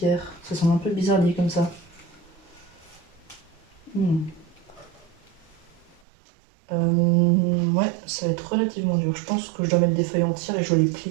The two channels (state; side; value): drops out; left; at 6.0 s